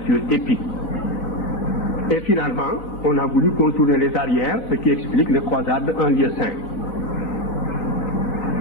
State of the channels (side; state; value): right; late; 3.8 ms